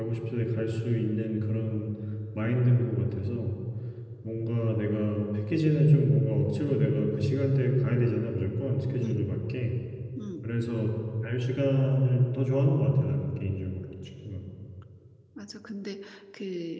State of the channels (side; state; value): both; identical; correlation 1.00